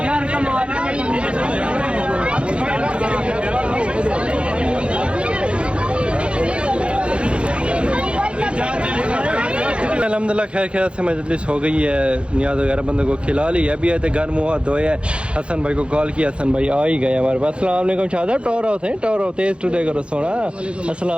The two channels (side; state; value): left; late; 0.058 ms